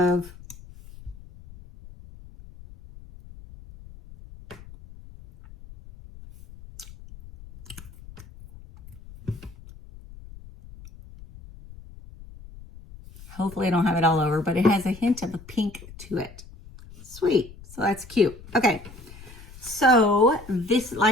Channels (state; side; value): noise; left; rumble, 18 dB below the sound